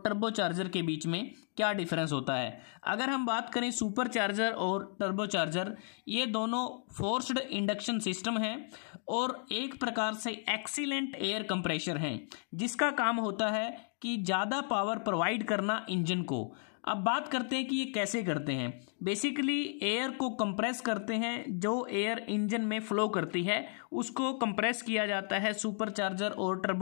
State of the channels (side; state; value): right; silent; 55 dB below the other